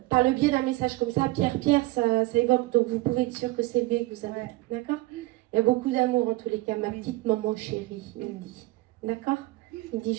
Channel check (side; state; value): left; quieter; 19.9 dB